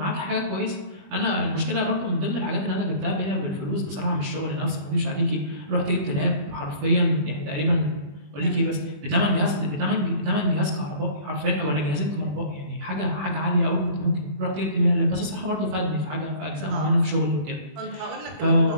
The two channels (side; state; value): left; late; 21 ms